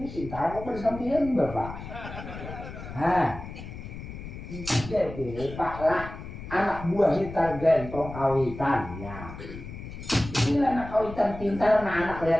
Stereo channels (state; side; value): noise; left; rumble, 11 dB below the sound